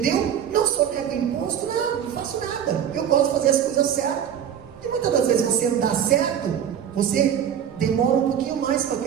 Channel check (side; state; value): left; quieter; 9.1 dB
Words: Não só nego imposto, não faço nada, eu gosto de fazer as coisas certas. E muitas das vezes você não dá certo, você demora um pouquinho mais para